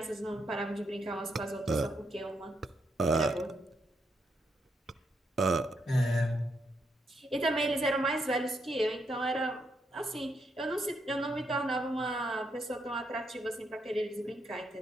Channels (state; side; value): normal; both; correlation 0.79